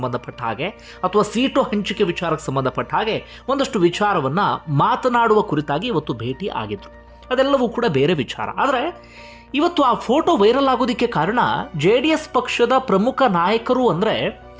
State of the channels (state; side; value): identical; both; correlation 1.00